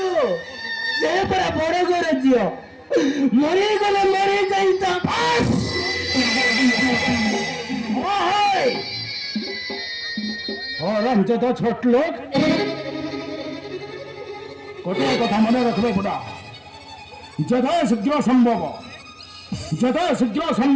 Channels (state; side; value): identical; both; correlation 1.00